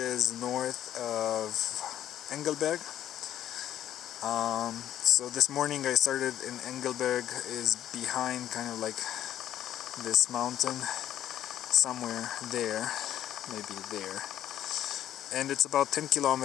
north of Engelberg. So this morning I started in Engelberg, is behind kind of like this mountain somewhere there, maybe there, and it's about 10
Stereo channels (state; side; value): quieter; right; 11.6 dB